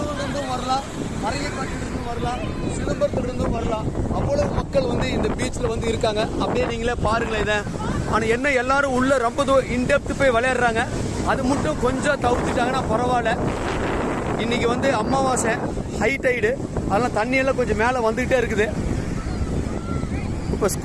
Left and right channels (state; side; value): identical; both; correlation 1.00